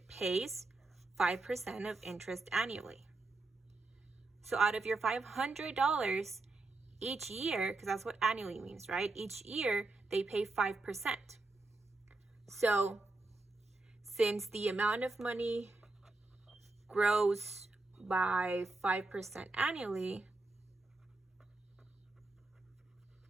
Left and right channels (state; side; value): quieter; left; 3.2 dB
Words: pays 5% of interest annually. So out of your $500 each year, because that's what annually means, right? Each year they pay 5%. So since the amount of money grows by 5% annually,